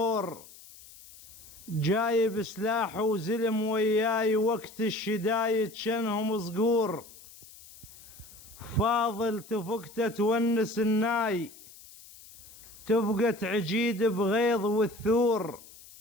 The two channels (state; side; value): noise; left; hiss, 20 dB below the sound